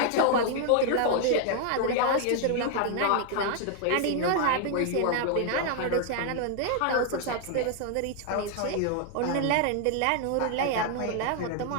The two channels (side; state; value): both; different; correlation 0.00